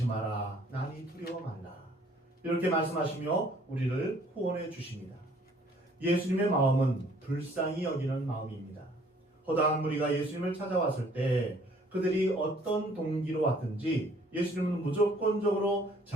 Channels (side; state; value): both; normal; correlation 0.59